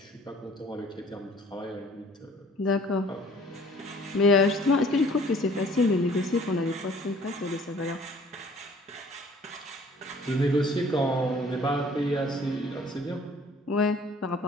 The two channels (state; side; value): normal; both; correlation 0.54